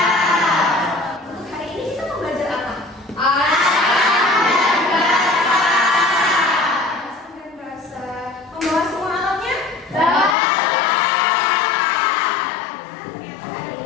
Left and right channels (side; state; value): right; drops out; at 10.4 s